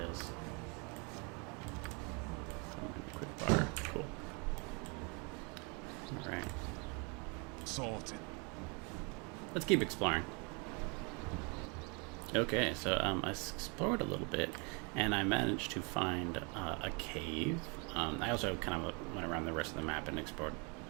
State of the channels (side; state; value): left; quieter; 32.5 dB